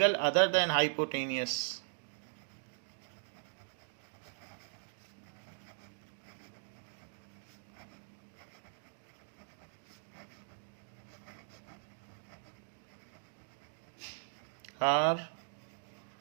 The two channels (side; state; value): left; silent; digital silence